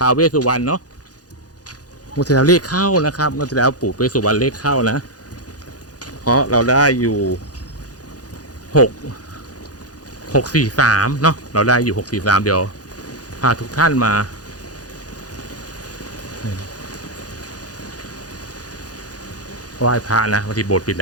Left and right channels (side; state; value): right; late; 0.68 ms